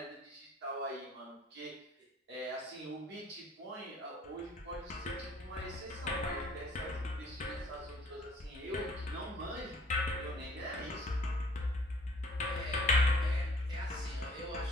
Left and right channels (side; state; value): both; normal; correlation 0.57